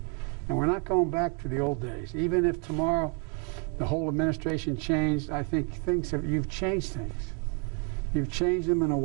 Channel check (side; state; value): left; quieter; 37.0 dB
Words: And we're not going back to the old days. Even if tomorrow the whole administration changed, I think you've changed things. You've changed them in a